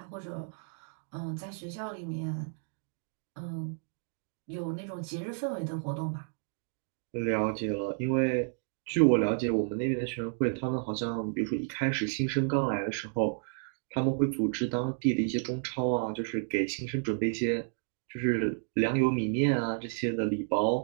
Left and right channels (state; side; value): silent; left; 57 dB below the other